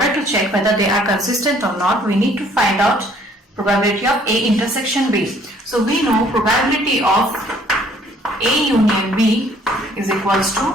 to check whether they are consistent or not, we need to find out probability of A intersection B. So we know probability of A union B is equals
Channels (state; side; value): normal; both; correlation 0.59